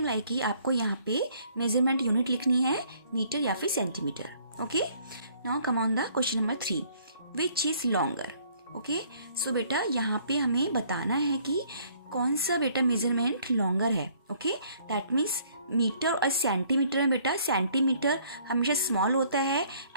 like he आपको यहाँ पे measurement unit लिखनी है, metre या फिर centimetre. Okay, now come on the question number 3, which is longer. Okay, so बेटा यहाँ पे हमें बताना है कि कौन सा बेटा मेजरमेंट लॉन्गर है। ओके, दैट मीन्स मीटर और सेंटीमीटर में बेटा सेंटीमीटर हमेशा स्मॉल होता है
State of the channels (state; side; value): inverted; both; correlation -0.61